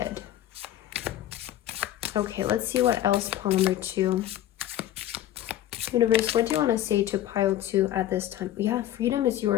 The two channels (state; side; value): quieter; right; 12.8 dB